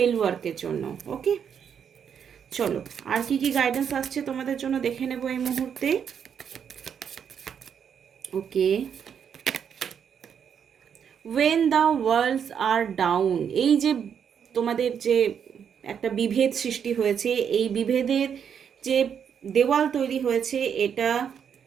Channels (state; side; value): quieter; left; 7.8 dB